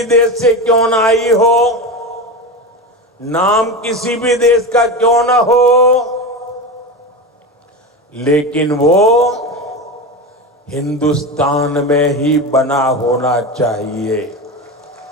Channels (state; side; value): normal; both; correlation 0.22